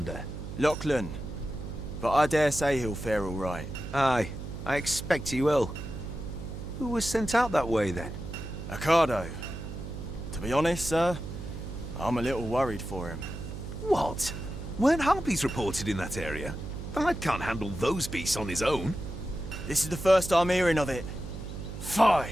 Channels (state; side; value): noise; right; hum, 8 dB below the sound